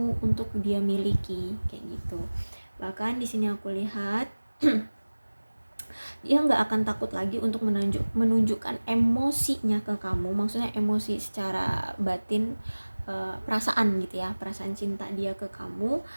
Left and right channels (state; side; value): inverted; both; correlation -1.00